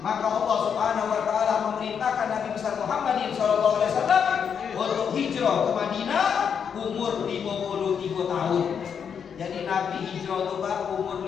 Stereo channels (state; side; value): quieter; right; 7.3 dB